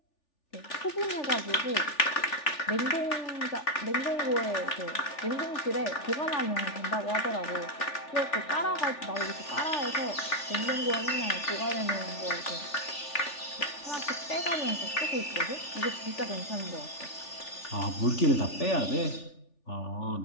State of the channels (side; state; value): right; late; 3.4 ms